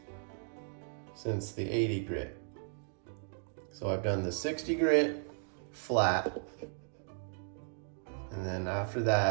since the 80 grit. So I've done the 60 grit flat, and then after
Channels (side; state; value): left; silent; digital silence